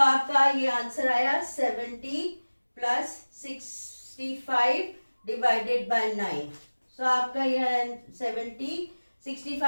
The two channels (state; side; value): inverted; both; correlation -1.00